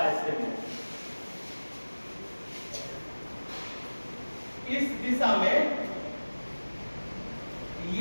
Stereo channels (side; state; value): both; inverted; correlation -1.00